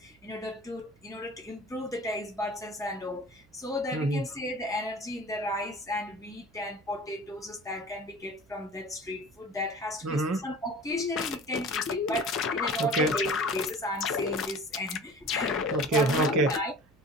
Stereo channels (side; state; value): right; noise; hum, 29 dB below the sound